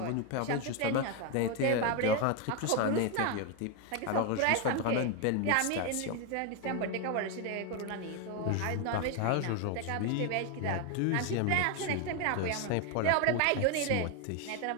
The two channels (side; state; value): both; different; correlation 0.01